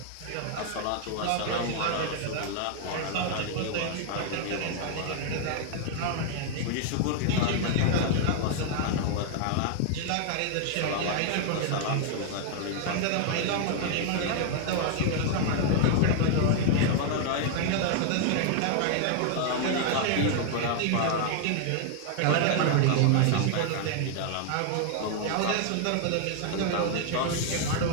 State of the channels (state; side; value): different; both; correlation 0.00